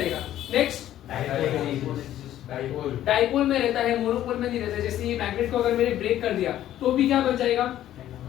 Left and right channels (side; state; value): right; quieter; 12.5 dB